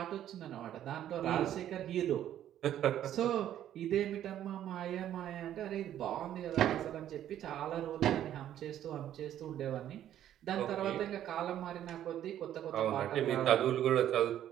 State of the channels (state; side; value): quieter; left; 11.3 dB